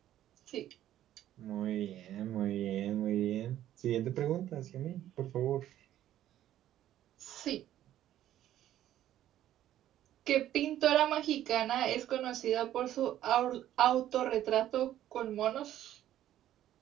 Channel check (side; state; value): left; quieter; 12.4 dB